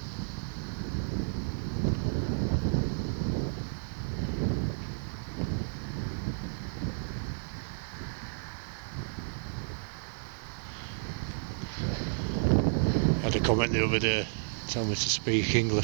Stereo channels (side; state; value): left; silent; digital silence